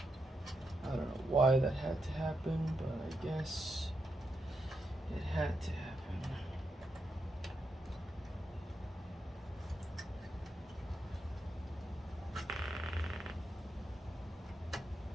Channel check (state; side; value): normal; both; correlation 0.84